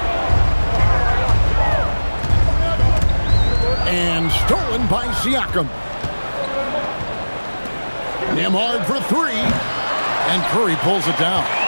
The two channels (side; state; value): both; inverted; correlation -1.00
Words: And stolen by Siakam. Nembhard for 3. And Curry pulls it down.